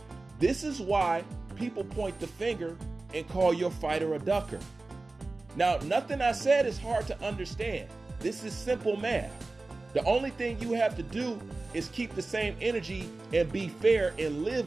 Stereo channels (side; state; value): left; quieter; 3.3 dB